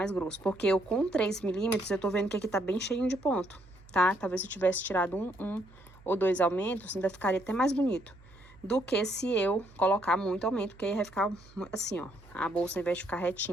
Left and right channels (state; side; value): noise; right; hum, 24 dB below the sound